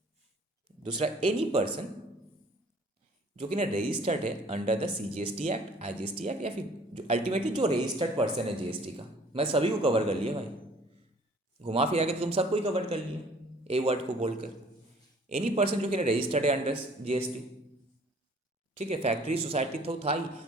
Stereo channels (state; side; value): normal; both; correlation 0.54